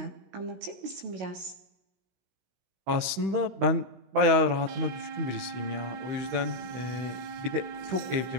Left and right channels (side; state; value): left; late; 16 ms